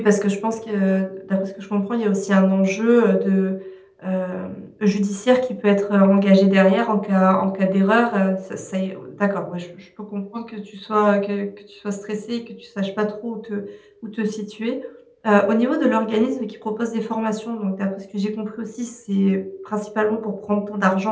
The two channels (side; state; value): both; identical; correlation 1.00